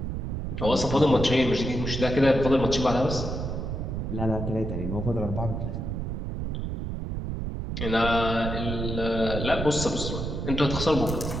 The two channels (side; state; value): right; noise; rumble, 4 dB below the sound